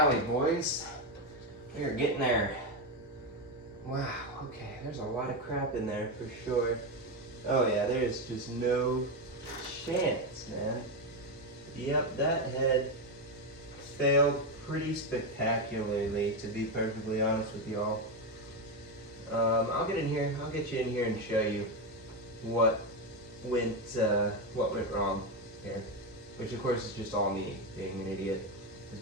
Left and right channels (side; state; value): both; normal; correlation 0.10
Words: boys. We are getting there. Wow, okay, there's a lot of crap in there for sure. Oh yeah, there's just no chance, man. Yep, that head failed pretty spectacularly, to be perfectly honest with y'all. I'll get in here. I'll get you in here and show you what went wrong here. Which of course is just all me being an idiot